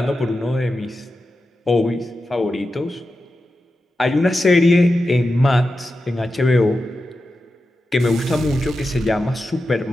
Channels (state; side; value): normal; both; correlation 0.91